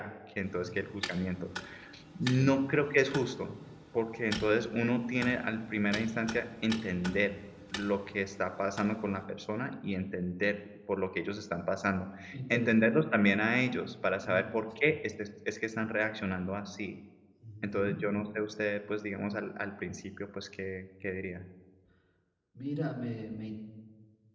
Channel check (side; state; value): both; identical; correlation 1.00